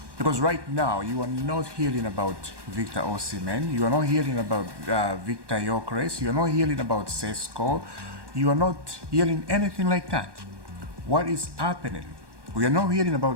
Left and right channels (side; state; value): left; late; 1.2 ms